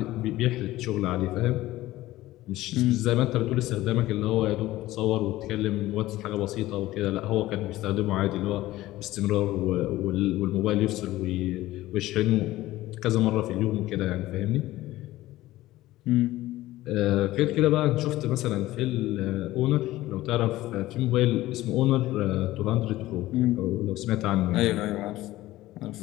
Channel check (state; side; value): quieter; right; 16.5 dB